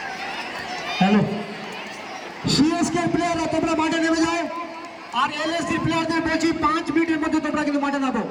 হ্যালো, সিএসকে প্লেয়াররা তোমরা মাঠে নেমে যাও, আর এলএসডি প্লেয়ারদের বলছি 5 মিনিটের মধ্যে তোমরা কিন্তু মাঠে নামো।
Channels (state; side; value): identical; both; correlation 1.00